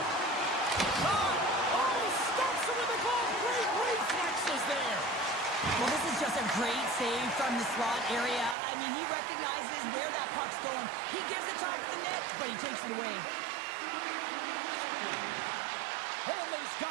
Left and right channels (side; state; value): left; drops out; at 8.6 s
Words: Shot! Oh, he stops it with a glove. Great reflexes there. Well, this is just a great save from the slot area. I mean, he recognizes where that puck's going. He gives it top of the net, but he takes it away. Holmley's